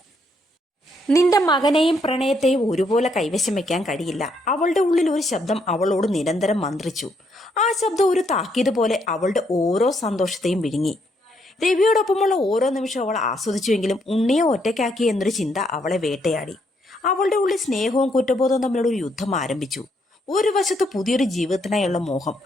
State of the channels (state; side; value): normal; both; correlation 0.74